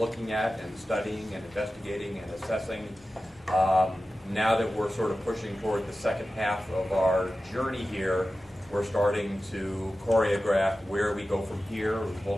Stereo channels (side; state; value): both; normal; correlation 0.94